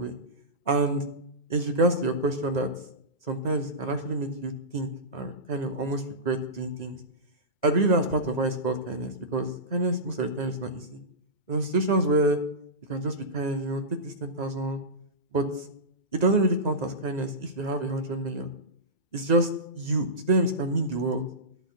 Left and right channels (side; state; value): right; late; 2.0 ms